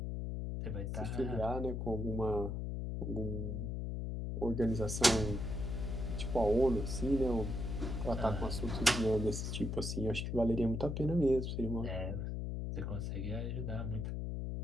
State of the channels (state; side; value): noise; left; hum, 2 dB below the sound